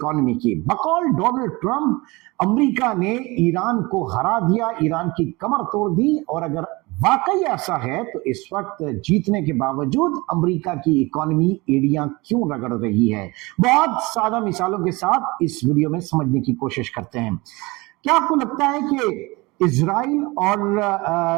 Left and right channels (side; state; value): left; quieter; 23.7 dB